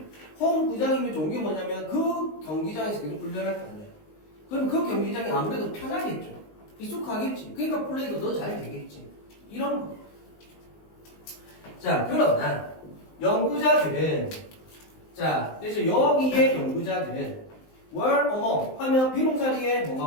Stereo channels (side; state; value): right; late; 19 ms